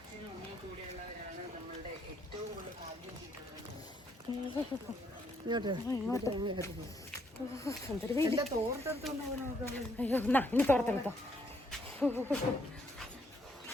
അയ്യോ എന്നാ ഇനി തോർത്തെടുത്തോ.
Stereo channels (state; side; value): normal; both; correlation 0.71